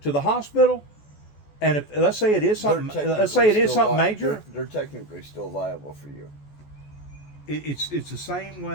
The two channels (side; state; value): right; late; 14 ms